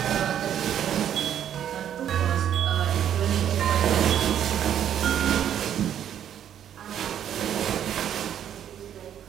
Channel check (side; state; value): left; quieter; 9.9 dB